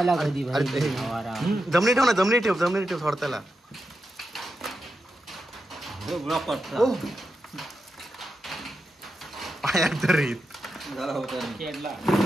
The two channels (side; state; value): both; normal; correlation 0.88